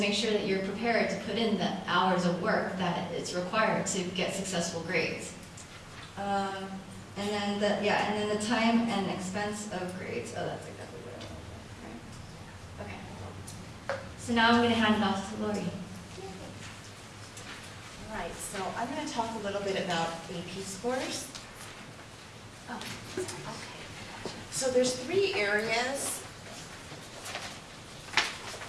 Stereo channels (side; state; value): both; identical; correlation 1.00